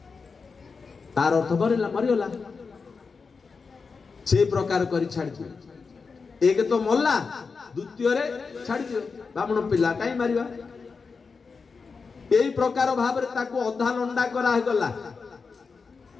तार अर्थ मरिगला से प्रकार करी छाड़ी दियो एक तो मल्ला द्वितीय रे छाड़ी दियो ब्राह्मण पिला काई मारिबा एई प्रकार भाव रे ताको अधा लंडा करा हे गला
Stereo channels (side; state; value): right; quieter; 4.9 dB